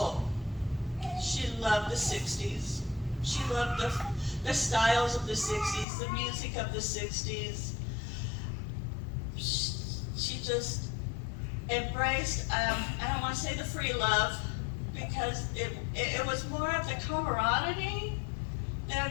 She loved the 60s. She loved the styles of the 60s, the music of the 60s. She just embraced, I don't want to say the free love, because it was more of the camaraderie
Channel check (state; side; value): drops out; right; at 5.9 s